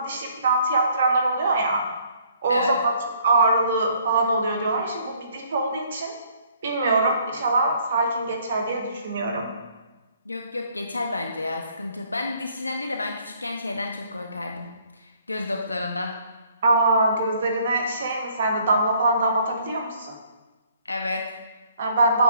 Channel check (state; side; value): inverted; both; correlation -0.63